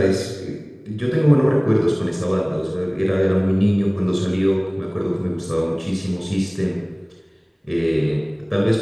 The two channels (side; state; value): both; identical; correlation 1.00